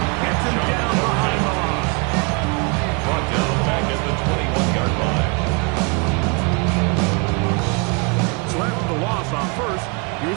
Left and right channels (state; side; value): quieter; left; 31.6 dB